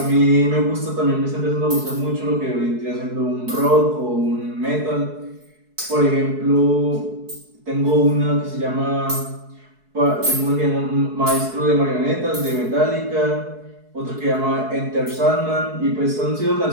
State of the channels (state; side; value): late; left; 4.7 ms